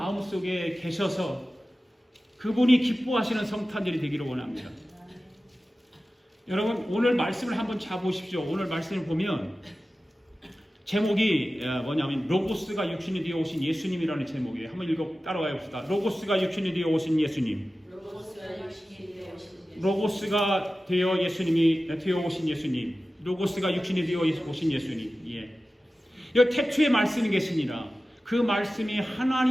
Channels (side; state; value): both; normal; correlation 0.95